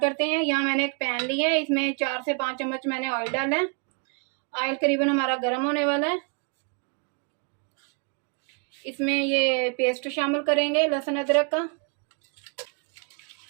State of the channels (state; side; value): quieter; left; 38.1 dB